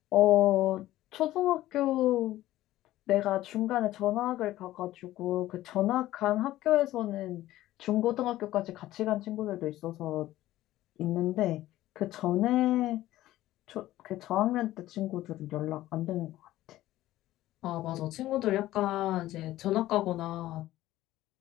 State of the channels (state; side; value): quieter; right; 15.2 dB